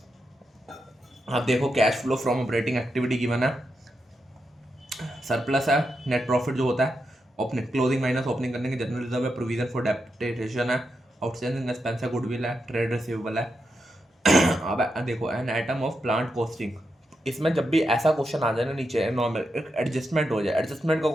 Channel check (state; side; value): normal; both; correlation 0.85